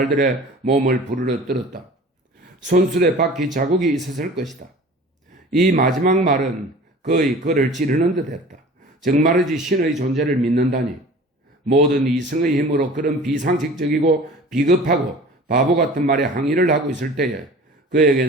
몸을 부르러 떨었다. 손수레 바퀴 자국이 있었을 것이다. 이 마지막 말은 거의 그를 찌르는 듯 했다. 정말이지 신의 존재를 믿는다니. 모든 이성의 힘으로 그런 비상식적이고 비겁하고 바보 같은 말에 항의를 하고 있을 때에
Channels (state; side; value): normal; both; correlation 0.43